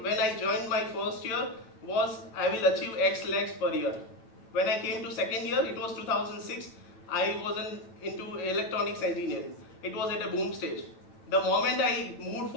I joined my first year was I will achieve X lakhs per year. When I came to second year, it was 2006. I was into electronics engineering. It was at a boom stage. The moment I moved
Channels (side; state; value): right; late; 9.1 ms